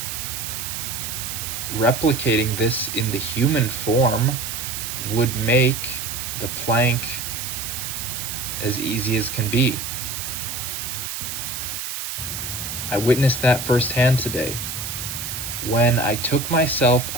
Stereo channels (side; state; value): right; noise; hiss, 5 dB below the sound